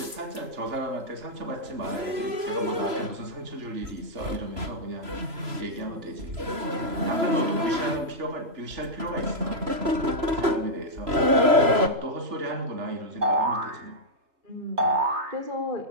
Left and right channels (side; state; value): left; late; 3.0 ms